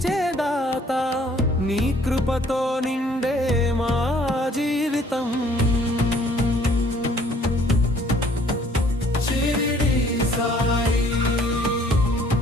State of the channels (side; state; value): both; normal; correlation 0.59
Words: దాత, నీ కృపతో నిండే మా జీవితం. షిరిడి సాయి,